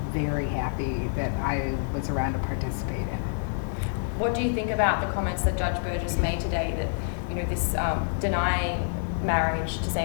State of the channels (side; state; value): right; silent; digital silence